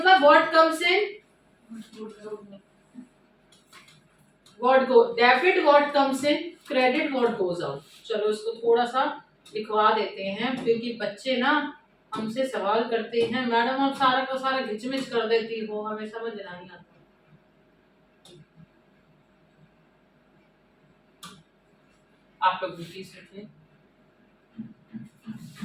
what comes in, what go, debit what comes in, credit what goes out. चलो इसको थोड़ा सा लिखवा देते हैं क्योंकि बच्चे ना हमसे सवाल करते हैं, मैडम आप सारा का सारा घिचमिच कर देती हो, हमें समझ नहीं आता। आप लोग भी प्लीज लिखिए।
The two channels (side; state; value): both; identical; correlation 1.00